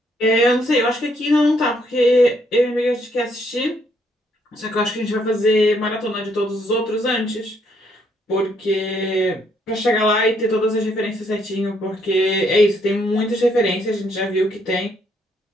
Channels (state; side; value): normal; both; correlation 0.71